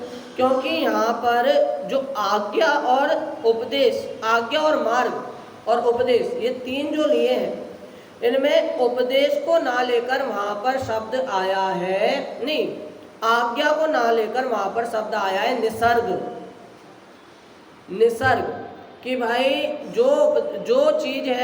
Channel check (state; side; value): identical; both; correlation 1.00